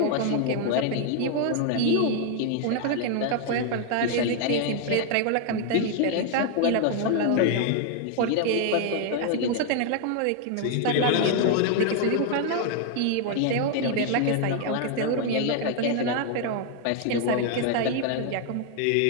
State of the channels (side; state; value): both; different; correlation 0.00